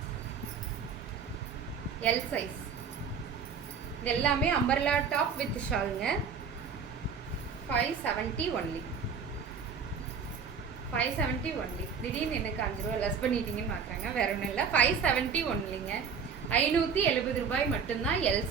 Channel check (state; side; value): quieter; left; 6.1 dB